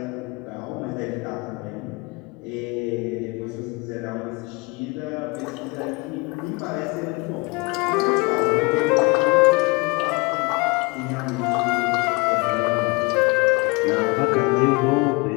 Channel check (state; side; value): quieter; right; 27.5 dB